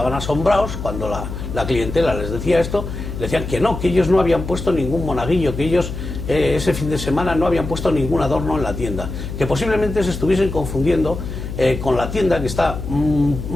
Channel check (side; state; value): left; noise; hum, 7 dB below the sound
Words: asombrados cuando la clientela les decía esto, le decían que no, que ellos no habían puesto ningún monaguillo, que ellos ese fin de semana no habían puesto ningún adorno en la tienda, que posiblemente se estuviesen confundiendo con la tienda que está